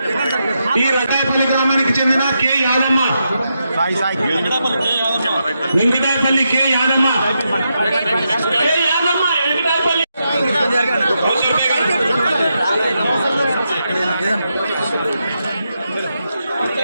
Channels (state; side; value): inverted; both; correlation -0.84